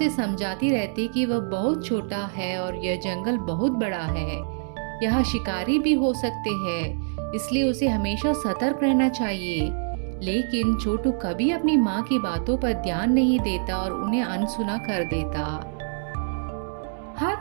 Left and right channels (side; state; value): left; silent; 61 dB below the other